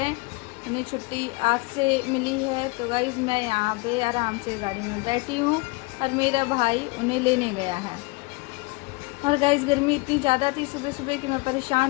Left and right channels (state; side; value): quieter; right; 26.0 dB